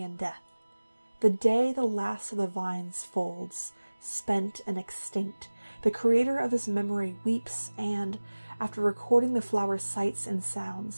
death. The day the last of the vines folds, spent and extinct, the creator of this memory weeps and, after recording the flower's sights and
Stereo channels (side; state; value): both; inverted; correlation -1.00